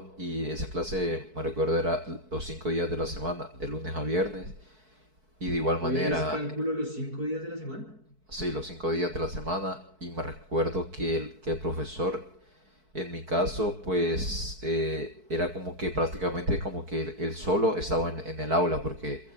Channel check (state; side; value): late; left; 4.6 ms